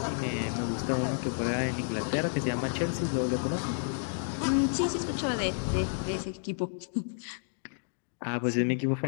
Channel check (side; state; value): right; silent; digital silence